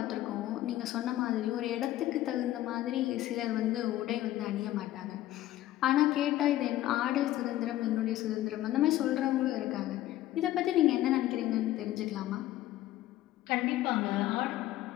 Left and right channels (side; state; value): right; quieter; 14.5 dB